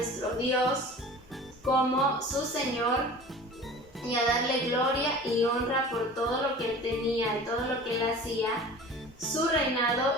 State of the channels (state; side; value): normal; both; correlation 0.40